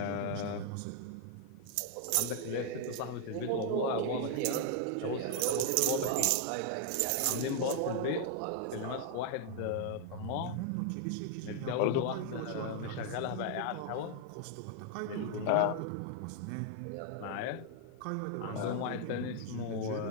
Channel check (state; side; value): different; both; correlation 0.00